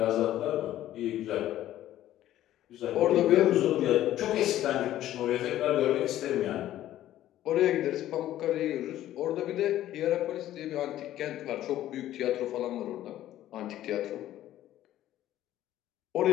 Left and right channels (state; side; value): quieter; right; 13.2 dB